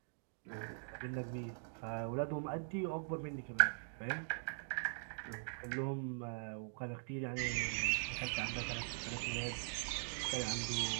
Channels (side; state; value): left; silent; digital silence